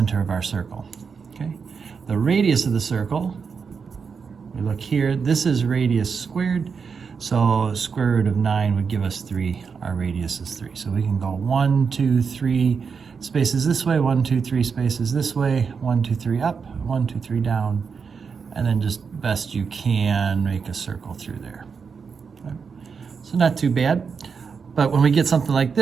of our circle. Okay. The radius of the circle, we look here, this is radius squared, so square root of 9 would give us 3. Our radius is 3. So we can go 1, 2, 3 spaces this way, 1, 2, 3 spaces this way, 1, 2, 3 up, 1, 2, 3 down, and then just best you can make a circle through there. Okay. So not too bad. But when we get something like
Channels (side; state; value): left; quieter; 5.8 dB